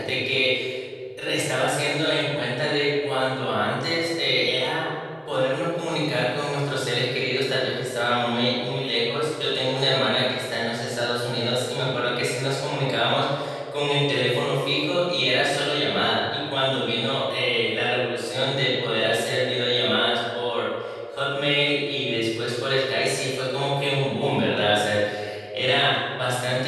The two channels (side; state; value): both; identical; correlation 1.00